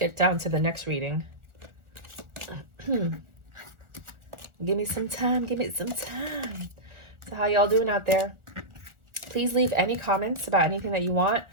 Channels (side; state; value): left; late; 1.4 ms